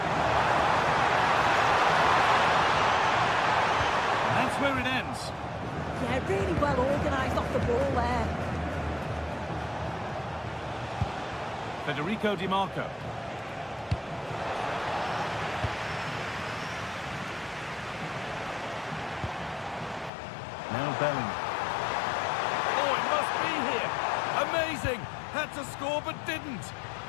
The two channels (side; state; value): right; drops out; at 20.1 s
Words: And that's where it ends. Yeah, really well organised off the ball there. Federico Di Marco. Now Bellingham. Oh, it must be here. Amazing. Had to score but didn't.